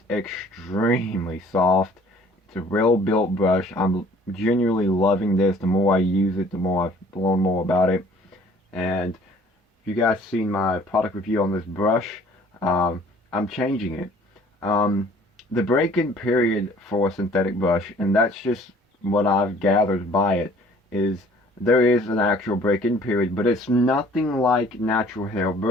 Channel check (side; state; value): both; normal; correlation 0.54